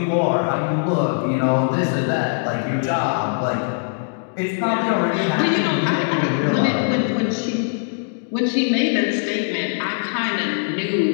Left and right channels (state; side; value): silent; right; digital silence